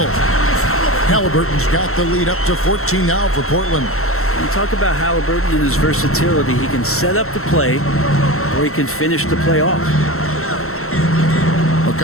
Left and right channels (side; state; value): right; late; 0.63 ms